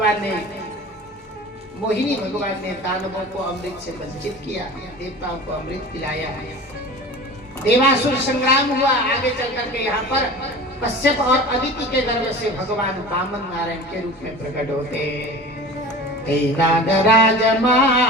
ने मोहिनी भगवान ने दानवों को अमृत से वंचित किया, देवताओं को अमृत पिलाया। देवासुर संग्राम हुआ। आगे चल करके यहाँ पर कश्यप और अदिति के गर्भ से भगवान वामन नारायण के रूप में प्रकट होते। नागराज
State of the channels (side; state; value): both; normal; correlation 0.37